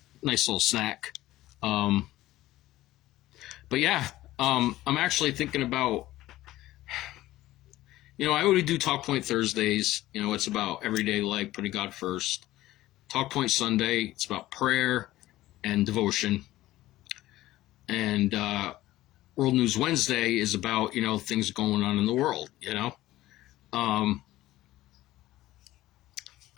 nice little snack. Um, but yeah, I'm actually thinking about, I already do Talk Point Thursdays. It's about everyday life, putting God first. Talk Point Sunday, it's about prayer and devotion. And World News Wednesday is about, things going on in the world, Um,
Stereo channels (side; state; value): right; quieter; 16.0 dB